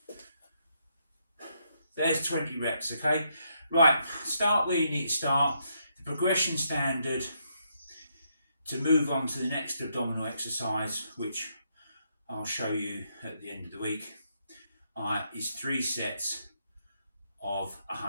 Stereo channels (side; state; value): both; inverted; correlation -0.77